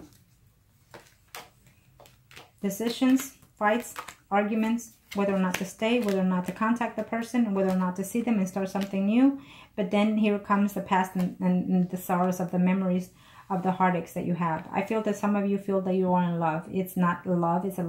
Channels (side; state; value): both; identical; correlation 1.00